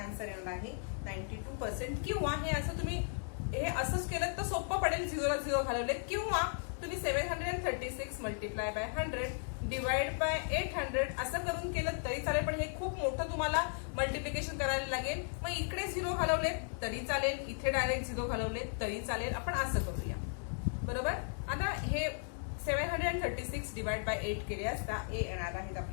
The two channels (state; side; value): silent; right; 54 dB below the other